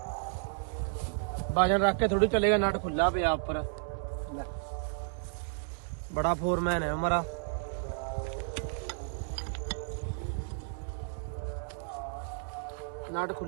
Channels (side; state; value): left; silent; digital silence